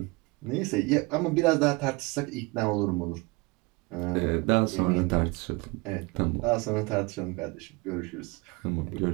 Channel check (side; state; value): left; quieter; 25.5 dB